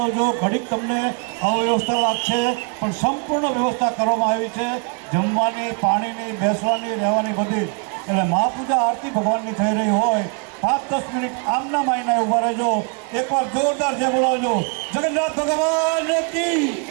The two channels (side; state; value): left; quieter; 38.6 dB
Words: ઘડીક તમને અવ્યવસ્થા લાગશે, પણ સંપૂર્ણ વ્યવસ્થા કરવામાં આવી છે, જમવાની, પાણીની, બેસવાની, રહેવાની, બધી. એટલે મહાપૂજા આરતી ભગવાનની થઈ રહી હોય, 5-10 મિનિટ આમના માયના ઊભા રહેજો. એકવાર જોરદાર છે બોલાવજો, જગન્નાથ ભગવાન કી,